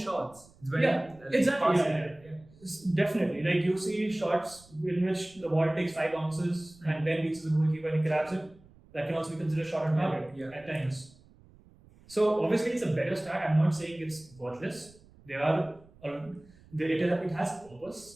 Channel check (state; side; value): noise; right; rumble, 26 dB below the sound